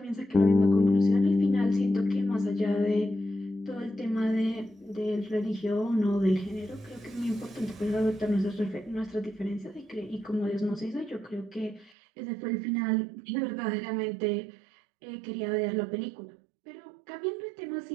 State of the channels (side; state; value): left; drops out; at 11.9 s